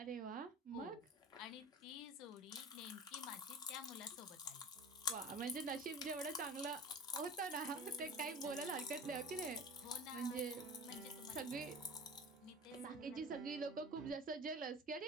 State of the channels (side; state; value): both; normal; correlation 0.36